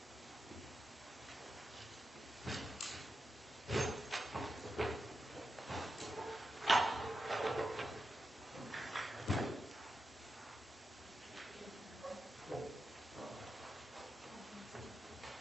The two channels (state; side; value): normal; both; correlation 0.89